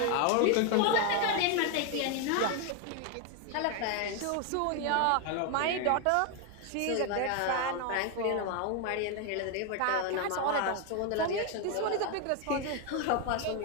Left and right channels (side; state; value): both; different; correlation 0.01